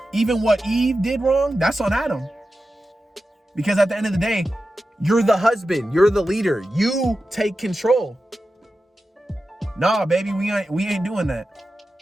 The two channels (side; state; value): both; normal; correlation 0.92